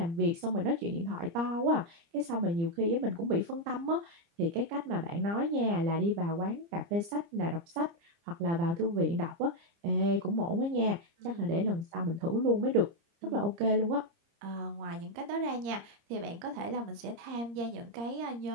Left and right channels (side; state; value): left; late; 30 ms